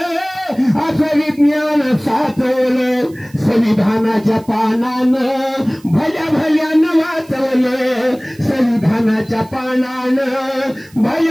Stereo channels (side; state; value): right; noise; hiss, 27 dB below the sound